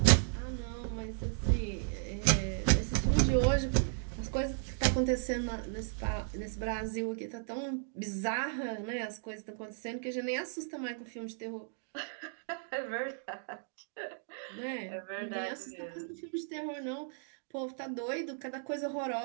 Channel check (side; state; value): left; silent; digital silence